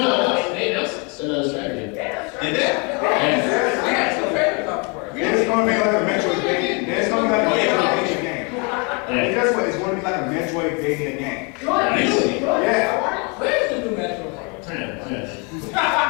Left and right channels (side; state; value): right; quieter; 32.7 dB